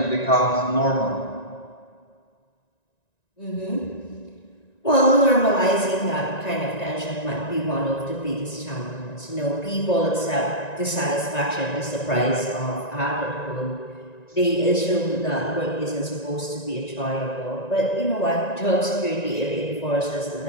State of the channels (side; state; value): right; late; 1.9 ms